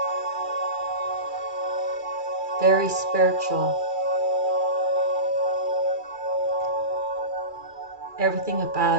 very spiritual. Everything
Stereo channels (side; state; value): left; late; 2.4 ms